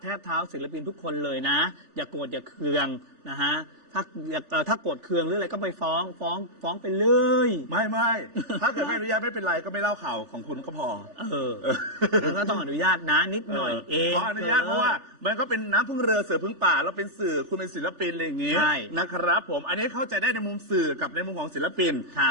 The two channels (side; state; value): left; late; 3.4 ms